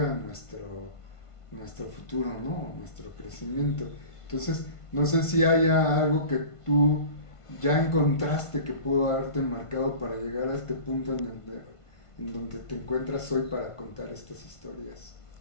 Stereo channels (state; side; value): late; right; 1.5 ms